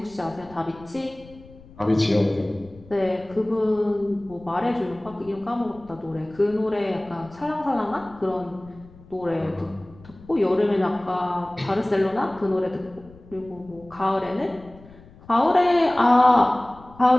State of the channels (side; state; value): left; noise; rumble, 22 dB below the sound